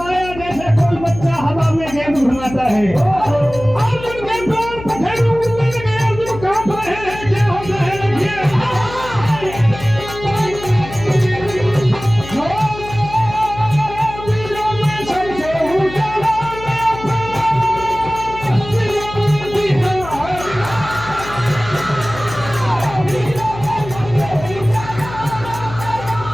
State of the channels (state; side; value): noise; left; hum, 13 dB below the sound